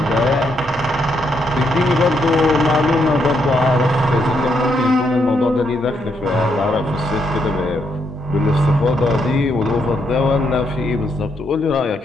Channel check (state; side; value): normal; both; correlation 0.77